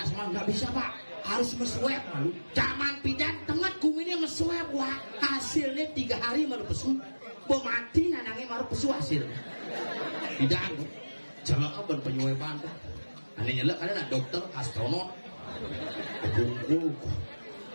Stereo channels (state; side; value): inverted; both; correlation -1.00